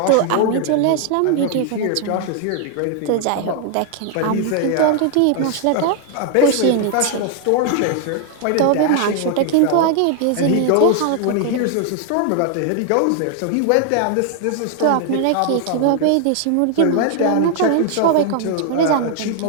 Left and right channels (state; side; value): different; both; correlation 0.00